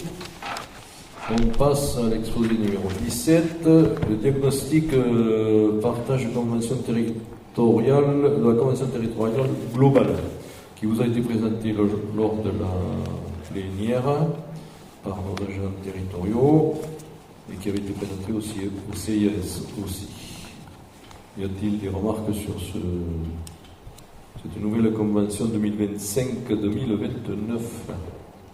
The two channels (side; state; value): both; identical; correlation 1.00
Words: On passe à l'exposé numéro 17, le diagnostic partage de convention territoriale, de la convention territoriale globale, qui vous a été présenté lors de la plénière par nos agents territoriaux et qui avait été présenté aussi au CIS aussi. Y a-t-il des remarques sur cette nouvelle convention 2025-2029?